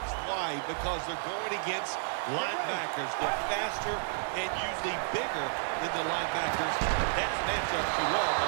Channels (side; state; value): left; silent; 57 dB below the other